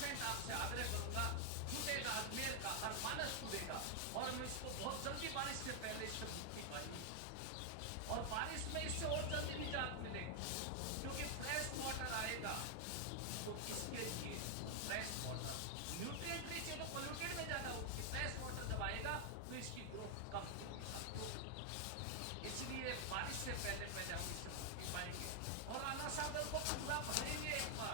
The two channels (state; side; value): different; both; correlation 0.00